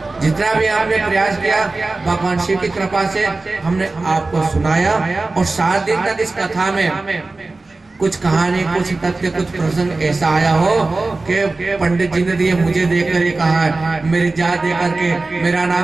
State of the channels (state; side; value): quieter; left; 3.4 dB